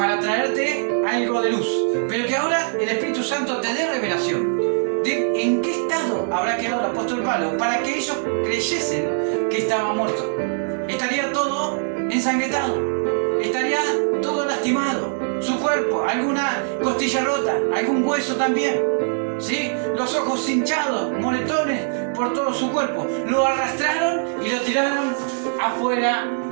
traerte algo de luz, pero que ahora el Espíritu Santo te dé revelación de en qué estado habrá quedado el apóstol Pablo para que ellos creyesen que estaba muerto. Estaría todo ensangrentado, estaría todo lastimado, su cuerpo, alguna costilla rota, algún hueso también, ¿sí? Los ojos hinchados, moretones por todo su cuerpo. Lo arrastraron y lo tiraron afuera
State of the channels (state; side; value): silent; left; digital silence